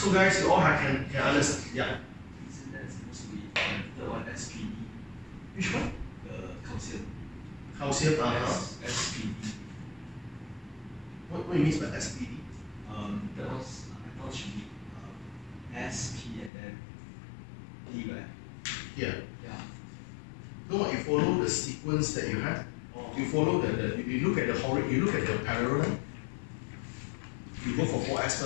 guys, you all can understand. Yeah. Isn't that supposed to be the one SPD? Which one? The calcium. Calcium, SPD. What do you mean by SPD? That was, I thought it should be SP and then D, right? Yeah. Yeah. No, you follow the sequence that you have. Oh. You follow you look at the parallel. You go for 4S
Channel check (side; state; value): right; drops out; at 16.5 s